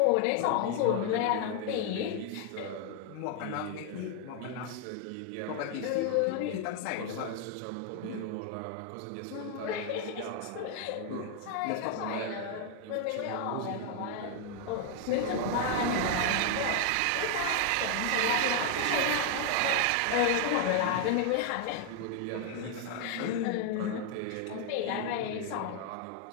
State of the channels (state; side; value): different; both; correlation 0.00